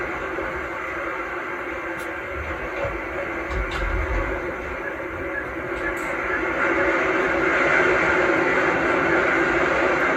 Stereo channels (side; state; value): both; identical; correlation 1.00